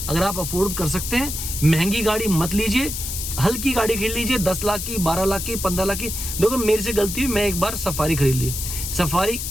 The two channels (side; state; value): left; noise; hiss, 5 dB below the sound